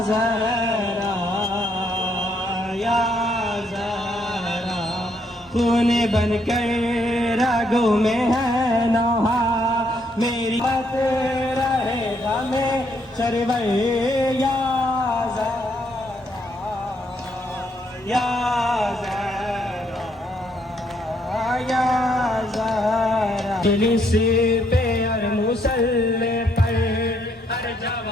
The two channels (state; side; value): normal; both; correlation 0.72